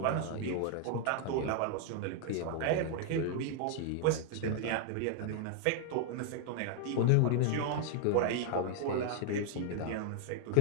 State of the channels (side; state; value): both; different; correlation 0.00